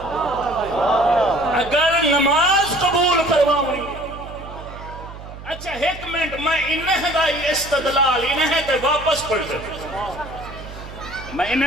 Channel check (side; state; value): right; noise; hum, 14 dB below the sound